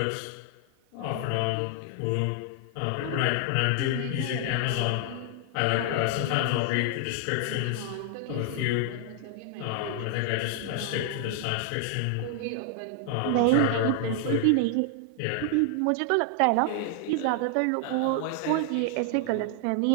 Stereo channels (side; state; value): both; different; correlation 0.00